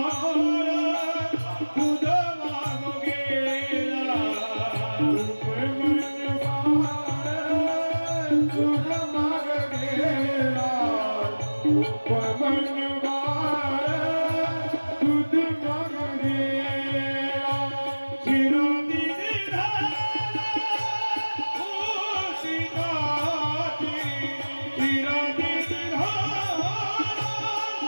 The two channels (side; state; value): both; inverted; correlation -1.00